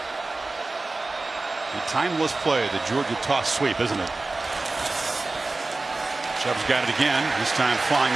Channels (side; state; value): left; quieter; 3.3 dB